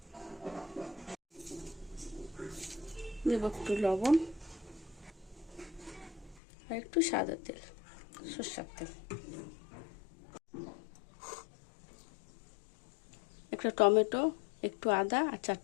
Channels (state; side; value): drops out; right; at 6.4 s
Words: দেব একটু লবণ আর একটু সাদা তেল, সরষের তেল, একটা টমেটো, একটু আদা আর